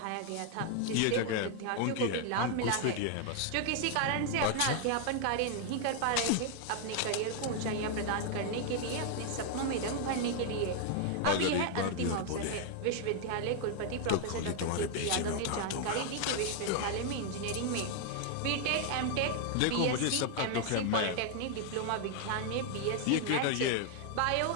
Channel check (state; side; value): different; both; correlation 0.00